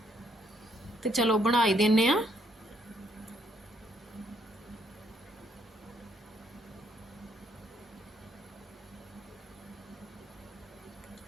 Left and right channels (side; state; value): both; normal; correlation 0.70